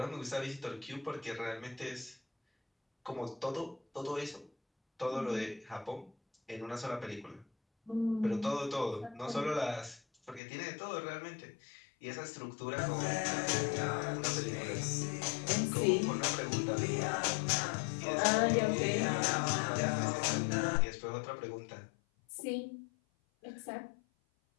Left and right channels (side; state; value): right; drops out; at 10.4 s